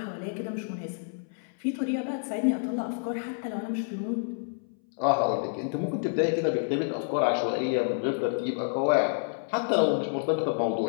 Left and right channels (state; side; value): silent; right; 59 dB below the other